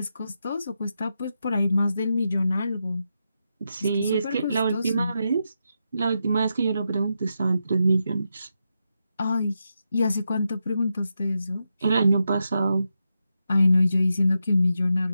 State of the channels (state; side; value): inverted; both; correlation -0.86